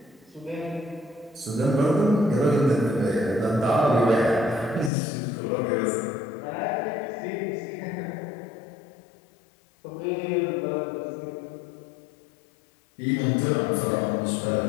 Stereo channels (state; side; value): drops out; right; at 4.9 s